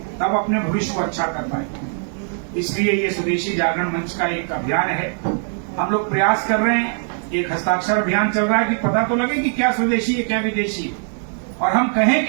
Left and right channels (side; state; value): left; silent; 62 dB below the other